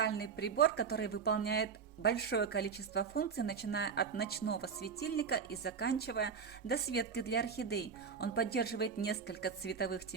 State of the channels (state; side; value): quieter; left; 6.1 dB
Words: прибор, который выполняет большое количество функций, начиная от ночного светильника и заканчивая досветкой для орхидей. Он поддерживает несколько цветовых